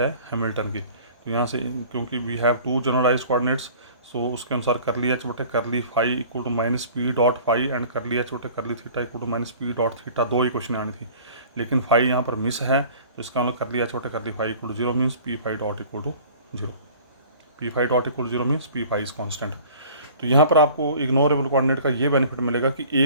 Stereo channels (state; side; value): inverted; both; correlation -0.47